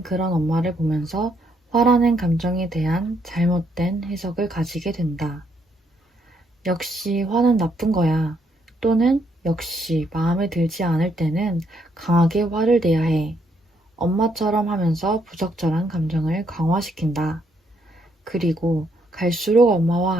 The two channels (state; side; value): normal; both; correlation 0.73